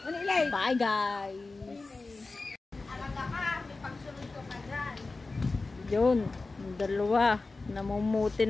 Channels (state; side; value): quieter; right; 3.6 dB